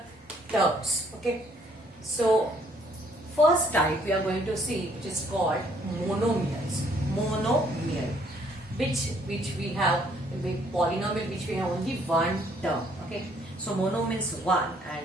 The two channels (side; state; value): both; normal; correlation 0.65